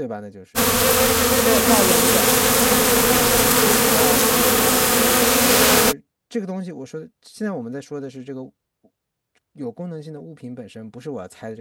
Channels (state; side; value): identical; both; correlation 1.00